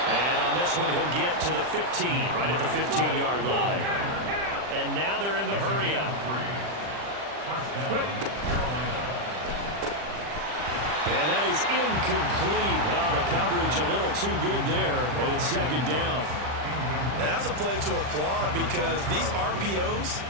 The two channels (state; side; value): late; left; 40 ms